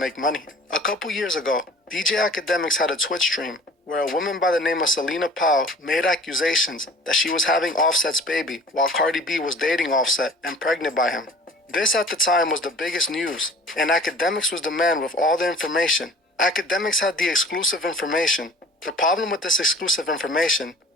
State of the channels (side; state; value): both; normal; correlation 0.45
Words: money. A couple years ago, DJ Academics had a Twitch stream where a woman by the name of Selena Powell made accusations that she was having Offset's baby while Cardi B was dating Offset and pregnant by him. This at the time was the biggest news, and Academics was the man with all the information. Academics had the exclusive information. The problem with this exclusive information